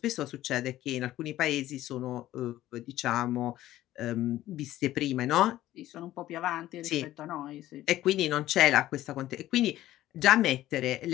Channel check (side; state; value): right; quieter; 14.5 dB